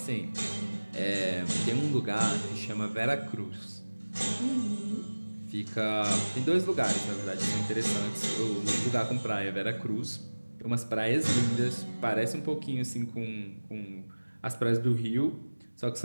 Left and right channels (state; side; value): inverted; both; correlation -1.00